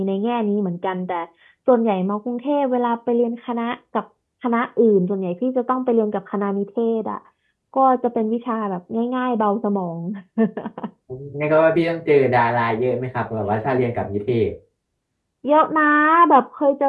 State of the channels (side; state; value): both; identical; correlation 1.00